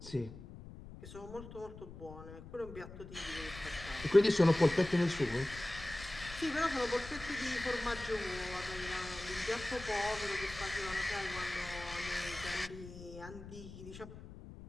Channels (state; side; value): noise; left; rumble, 14 dB below the sound